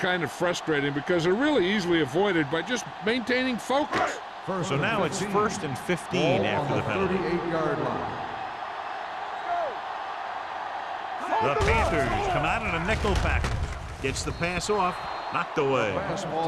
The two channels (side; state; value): both; identical; correlation 1.00